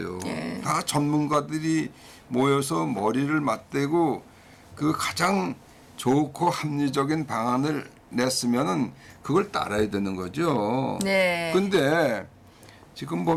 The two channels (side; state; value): both; identical; correlation 1.00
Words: 다 전문가들이 모여서 머리를 맞대고 가장 좋고 합리적인 방안을 냈으면은 그걸 따라야 되는 거죠. 네. 근데 지금